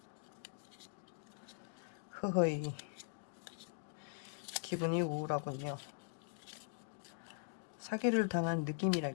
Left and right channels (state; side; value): silent; right; digital silence